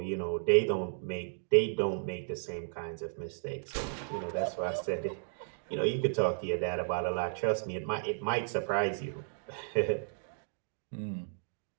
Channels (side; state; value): left; silent; digital silence